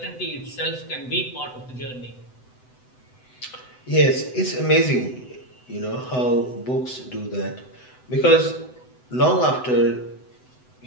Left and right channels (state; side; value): late; right; 7.9 ms